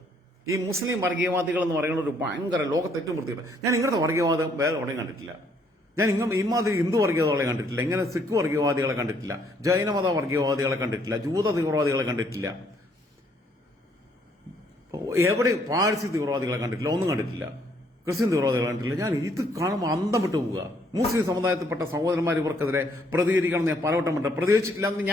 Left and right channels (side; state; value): both; normal; correlation 0.67